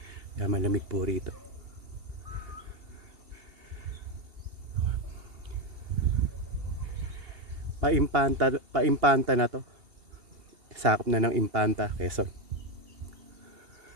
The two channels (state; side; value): late; left; 2.7 ms